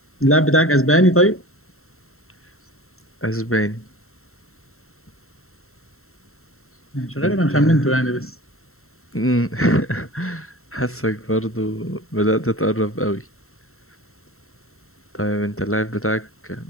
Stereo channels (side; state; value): right; late; 0.63 ms